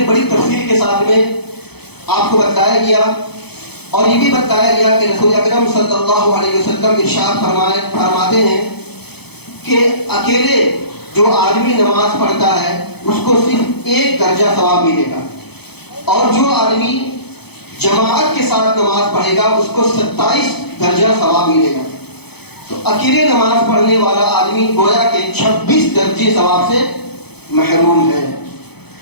بڑی تفصیل کے ساتھ میں آپ کو بتایا گیا اور یہ بھی بتایا گیا کہ رسول اکرم صلی اللہ علیہ وسلم ارشاد فرماتے ہیں کہ اکیلے جو آدمی نماز پڑھتا ہے اس کو صرف 1 درجہ ثواب ملے گا، اور جو آدمی جماعت کے ساتھ نماز پڑھے گا اس کو 27 درجہ ثواب ملے گا. تو اکیلے نماز پڑھنے والا آدمی گویا کہ 26 درجے ثواب سے محروم ہے.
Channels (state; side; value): late; right; 0.98 ms